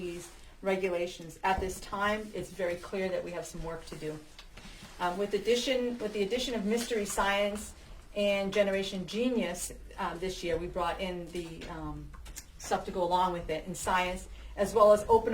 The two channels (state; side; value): identical; both; correlation 1.00